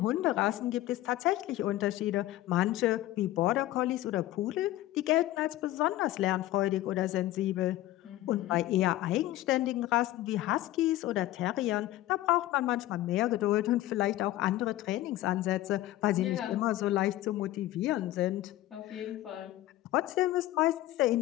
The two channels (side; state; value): right; quieter; 15.4 dB